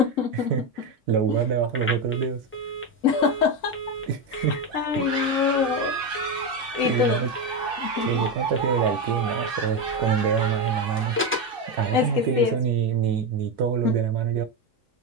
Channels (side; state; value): both; normal; correlation 0.12